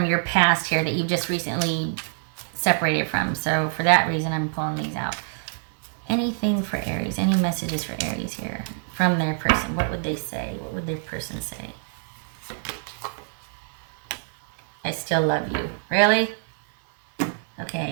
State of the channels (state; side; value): silent; left; 61 dB below the other